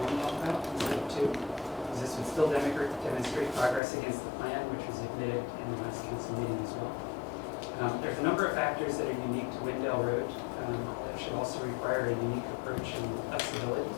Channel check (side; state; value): right; drops out; at 3.8 s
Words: 1 bump out instead of 2, because this would still demonstrate progress against the plan, which was admitted in the last council meeting as well. There's a number of factors that are unique to Windell Road that should also require a unique approach and flexibility